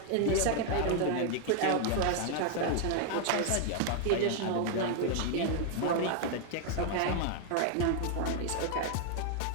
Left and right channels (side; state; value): both; different; correlation 0.00